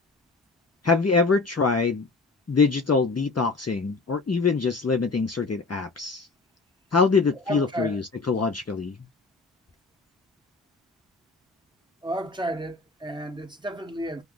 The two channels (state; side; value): quieter; right; 3.9 dB